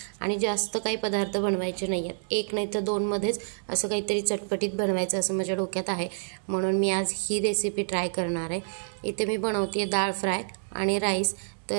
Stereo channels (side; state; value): left; silent; digital silence